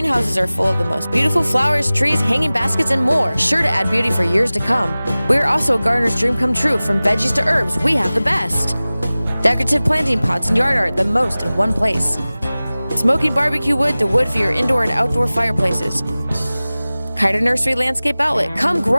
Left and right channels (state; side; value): inverted; both; correlation -0.98